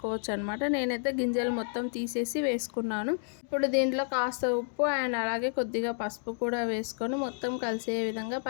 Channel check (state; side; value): silent; right; digital silence